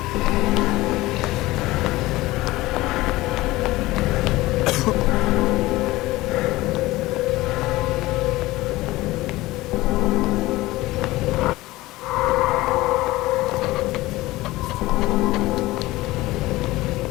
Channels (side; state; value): right; quieter; 18.8 dB